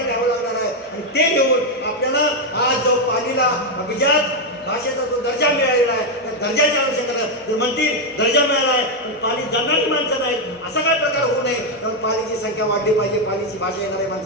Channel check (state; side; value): normal; both; correlation 0.04